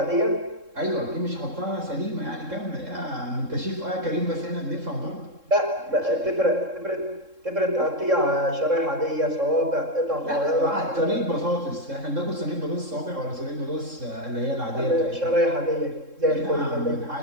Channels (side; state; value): left; late; 3.7 ms